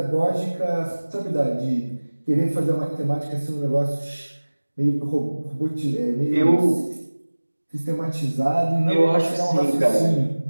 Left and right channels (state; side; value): inverted; both; correlation -1.00